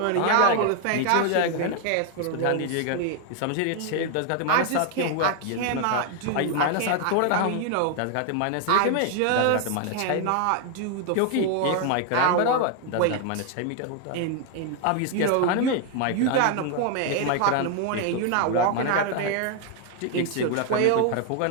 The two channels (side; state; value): both; different; correlation 0.01